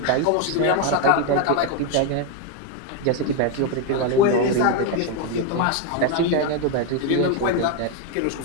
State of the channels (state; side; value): different; both; correlation 0.02